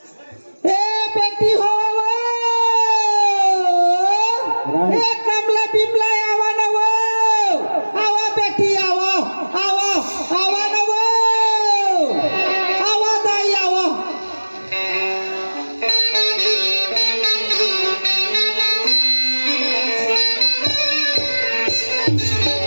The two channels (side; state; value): both; inverted; correlation -1.00